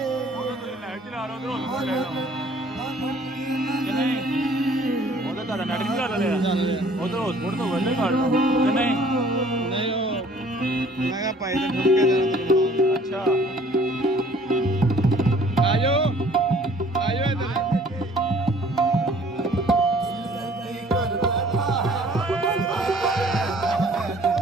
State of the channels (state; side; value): normal; both; correlation 0.55